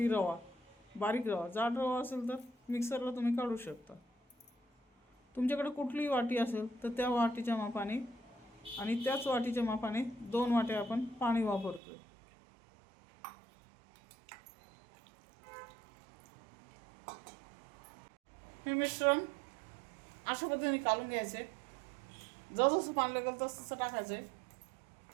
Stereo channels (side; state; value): left; drops out; at 11.8 s